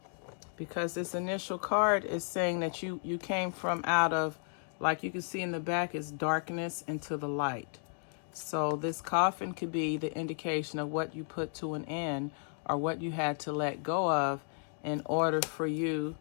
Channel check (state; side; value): silent; right; 55 dB below the other